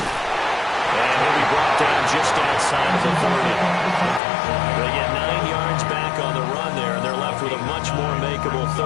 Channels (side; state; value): right; drops out; at 4.2 s